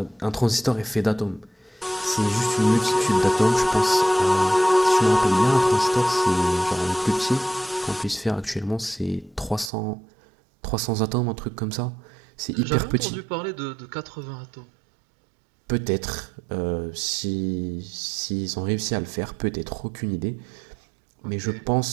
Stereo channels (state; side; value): drops out; left; at 9.7 s